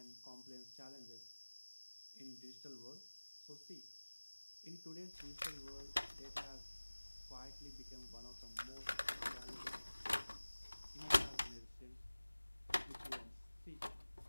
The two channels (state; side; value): inverted; both; correlation -1.00